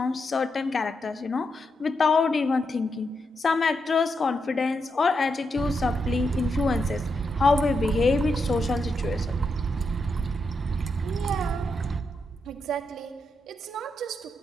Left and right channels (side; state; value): both; normal; correlation 0.83